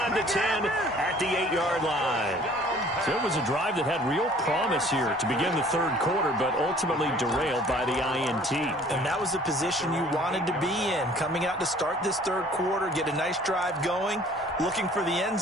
the 10 at the 8-yard line. So it was a drive that had real promise here to begin the third quarter, but ultimately derailed by the INT. And that was the position you wanted to be in. Coming out to start this third quarter, get a nice drive going, looking for the end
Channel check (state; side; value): normal; both; correlation 0.53